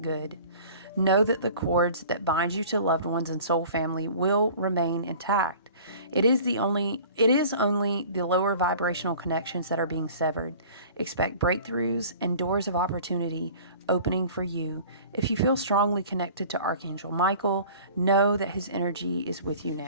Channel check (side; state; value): both; inverted; correlation -0.45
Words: good. Know that the cords that bind you to loved ones and soul family will remain intact. It is only the lower vibrational connections that are being severed. Expect breakthroughs and doors of opportunity opening for you. If you feel strongly connected to Archangel Michael, know that his energy is with you